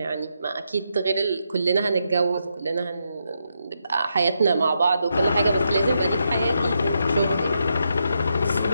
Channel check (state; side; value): inverted; both; correlation -0.82